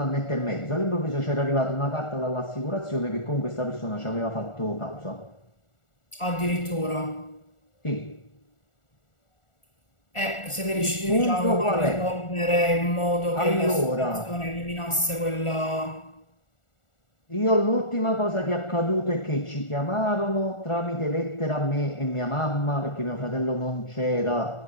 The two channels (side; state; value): right; late; 1.4 ms